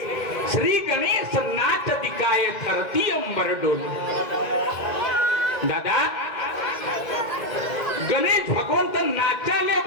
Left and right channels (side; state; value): right; late; 2.0 ms